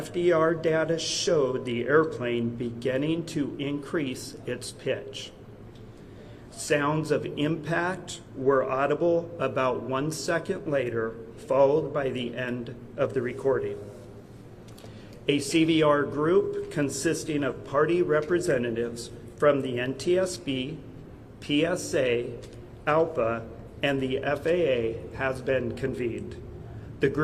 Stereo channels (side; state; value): both; identical; correlation 1.00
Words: data showed the airplane beginning to increase its pitch. Sounds of impact were audible about 1 second later, followed by the end of the recording. A CVR group consisting of party representatives from the NTSB, PSA, ALPA, and the FAA has been convened. The